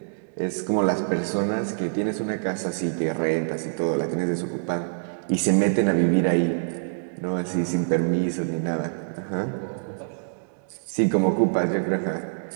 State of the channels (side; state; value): left; silent; digital silence